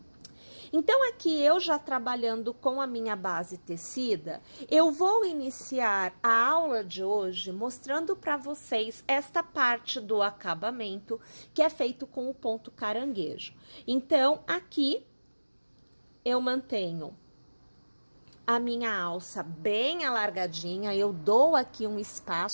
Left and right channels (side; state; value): both; inverted; correlation -1.00